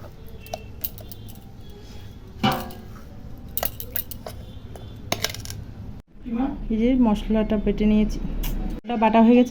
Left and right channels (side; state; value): both; identical; correlation 1.00